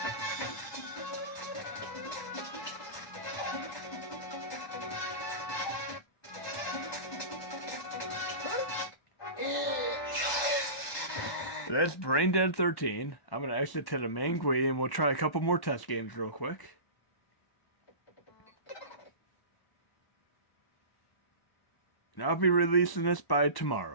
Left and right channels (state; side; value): late; right; 1.1 ms